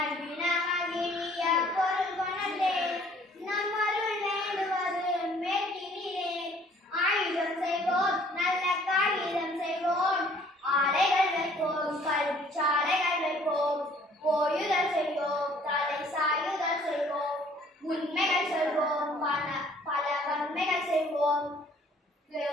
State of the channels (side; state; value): both; normal; correlation 0.58